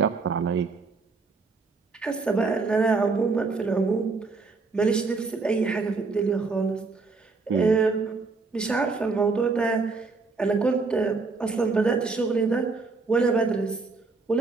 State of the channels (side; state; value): left; quieter; 4.1 dB